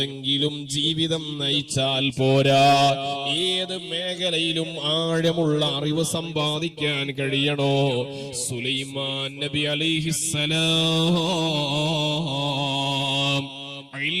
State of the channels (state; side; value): identical; both; correlation 1.00